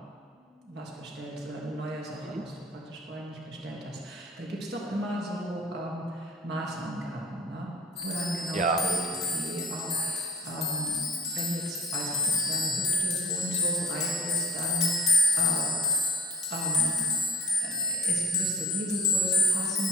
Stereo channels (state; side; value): normal; both; correlation 0.51